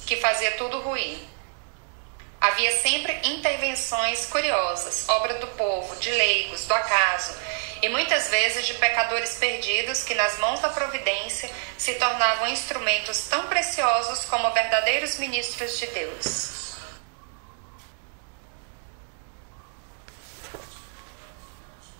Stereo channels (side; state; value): left; silent; 60 dB below the other